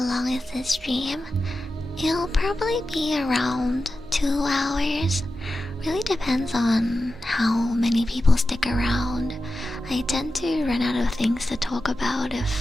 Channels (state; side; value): normal; both; correlation 0.92